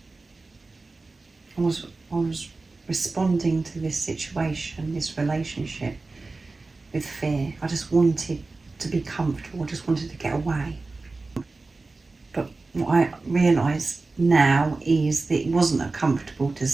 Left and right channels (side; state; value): left; quieter; 3.6 dB